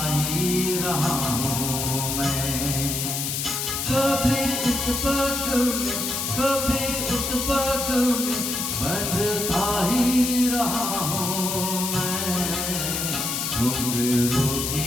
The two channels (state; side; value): noise; left; hiss, 2 dB below the sound